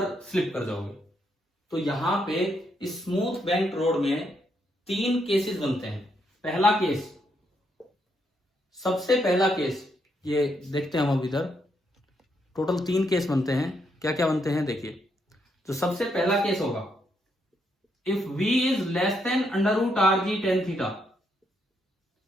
स्लिप कर जाओगे। तो यहां पे इस स्मूथ बैंक रोड में 3 केसेस बनते हैं। पहला केस, सबसे पहला केस ये देखते हैं हम अब इधर, टोटल 3 केस बनते हैं। क्या क्या बनते हैं देखिए। तो सबसे पहला केस होगा if v is less than under root R G tan theta.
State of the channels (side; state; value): both; normal; correlation 0.77